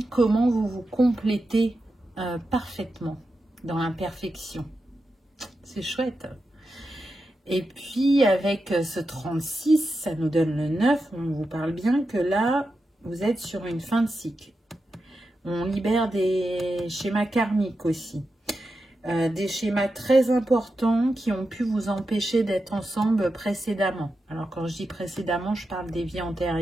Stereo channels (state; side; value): normal; both; correlation 0.89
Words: comment vous vous complétez parfaitement dans l'imperfection. C'est chouette. Et puis avec ce 36, ça nous donne le 9, on vous parle bien que là, vous êtes sur une fin de cycle. On libère des schémas karmiques aussi. Des schémas très importants qui ont pu vous empêcher d'être ensemble précédemment. Alors quand je dis précédemment, je parle des vies